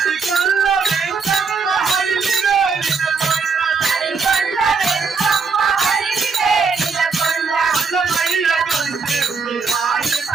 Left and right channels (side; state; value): left; quieter; 5.1 dB